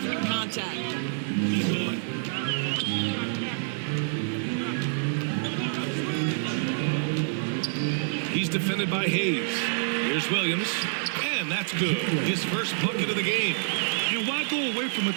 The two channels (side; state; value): left; silent; digital silence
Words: contact. He's defended by Hayes. Here's Williams. And that's good. His first bucket of the game. And why go away from